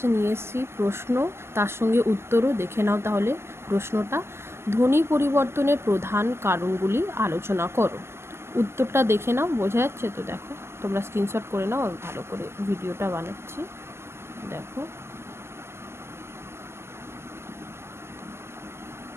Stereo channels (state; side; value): late; left; 0.12 ms